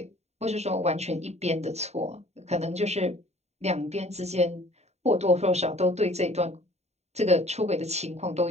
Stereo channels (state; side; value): late; left; 0.32 ms